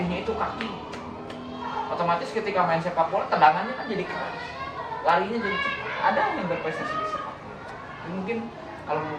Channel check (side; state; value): both; identical; correlation 1.00